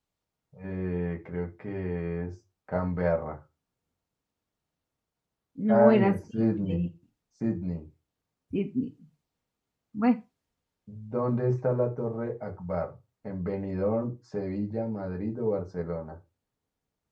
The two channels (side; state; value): both; identical; correlation 1.00